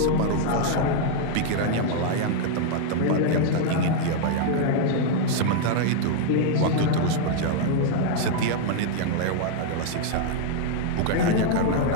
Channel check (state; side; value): different; both; correlation 0.00